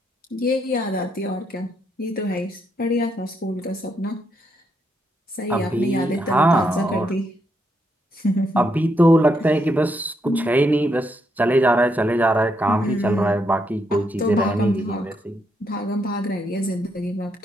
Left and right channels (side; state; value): both; normal; correlation 0.78